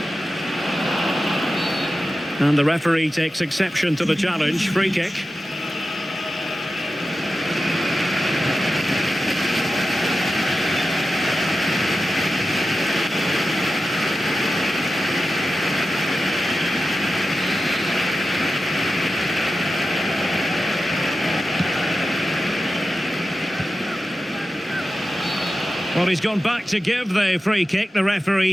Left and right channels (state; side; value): normal; both; correlation 0.92